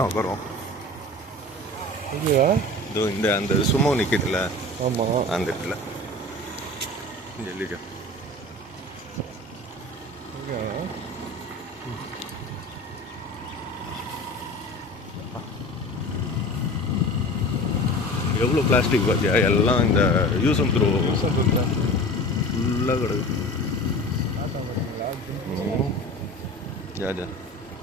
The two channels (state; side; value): normal; both; correlation 0.37